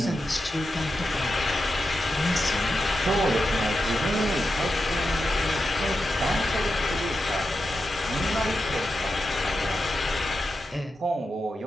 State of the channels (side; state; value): both; normal; correlation 0.89